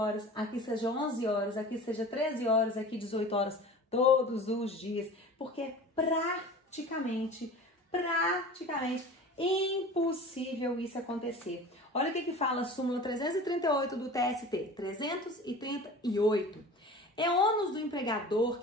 aqui seja 11 horas, aqui seja 13 horas, aqui 18 horas, todos os dias, porque praticamente Impossível isso acontecer. Olha o que fala a súmula 338 do TST. 338. É ônus do empregador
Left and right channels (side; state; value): both; normal; correlation 0.38